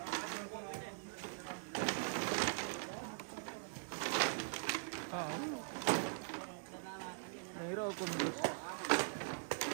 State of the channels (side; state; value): left; silent; digital silence